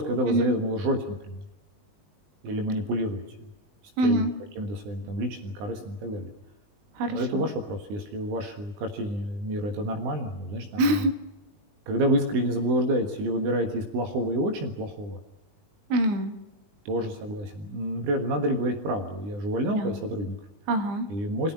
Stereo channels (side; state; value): left; late; 20 ms